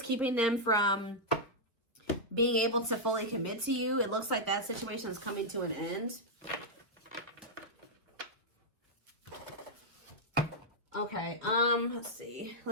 keeping them from being able to fully commit to you, it looks like that situation is coming to an end. Okay, let's see.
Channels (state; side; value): normal; both; correlation -0.06